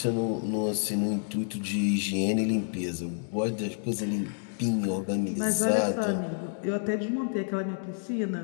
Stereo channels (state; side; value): silent; right; digital silence